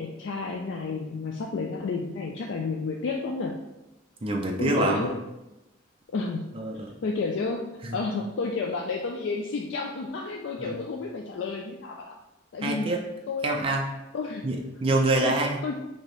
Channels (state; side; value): normal; both; correlation 0.28